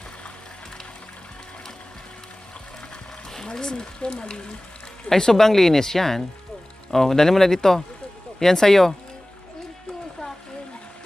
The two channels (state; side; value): normal; both; correlation 0.98